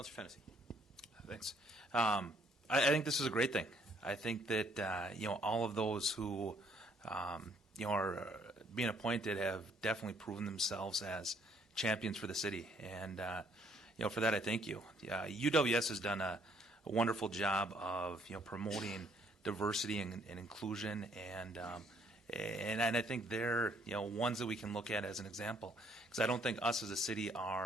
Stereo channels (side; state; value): both; normal; correlation 0.66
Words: Fennessy. Thanks. I think this is a great thing. I think that all of those who are being appointed have definitely proven themselves as champions for the city, and for that I thank you. UWS has done a wonderful job of promoting diversity and inclusion, and I think they're ones that we can look at as an example, because I don't think us as a city